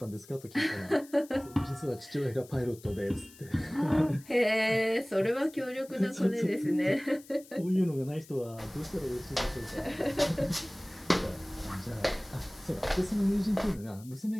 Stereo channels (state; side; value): noise; left; hiss, 22 dB below the sound